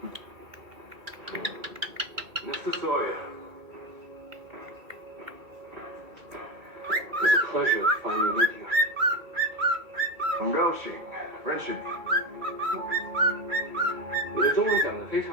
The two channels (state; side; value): late; left; 2.3 ms